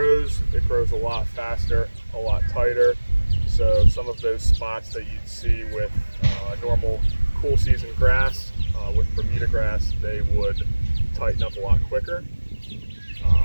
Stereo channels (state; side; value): inverted; both; correlation -1.00